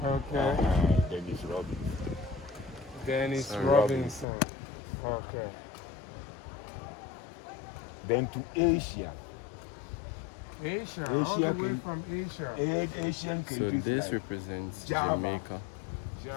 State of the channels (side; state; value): right; drops out; at 4.2 s